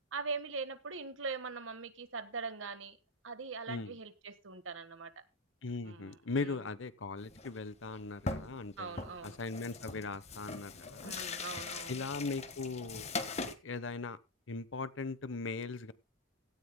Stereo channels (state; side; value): normal; both; correlation 0.09